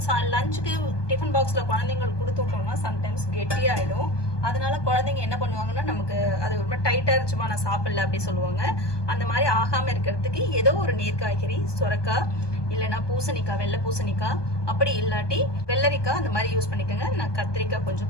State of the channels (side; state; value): right; late; 1.2 ms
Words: லஞ்சுக்கு டிஃபன் பாக்ஸில் குழந்தைங்களுக்கு கொடுத்து விட்டோம்னா சம்டைம்ஸ் கெட்டியாகிடும். அதனால குழந்தைங்க என்ன பண்ணுவாங்கன்னா நமக்கு அது ரொம்ப டைட்டாக இருந்துச்சுமா நான் சாப்பிடல அப்படி சொல்லுவாங்க. அந்த மாதிரி ஆகாமல் இருக்கிறதுக்கு ஏதோ ஒரு நீர் காய்கறி, சுரக்காய் இல்லைன்னா பூசணிக்காய், வெள்ளை பூசணிக்காய், அப்படி இல்லாட்டி வெள்ளரிக்காய் அந்த மாதிரி யூஸ் பண்ணிக்கோங்க. நான் கத்திரிக்காய்